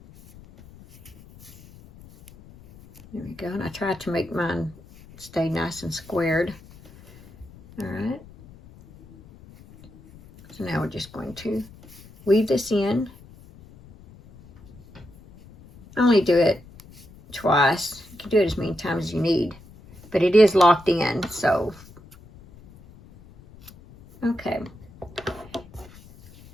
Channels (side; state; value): left; noise; rumble, 22 dB below the sound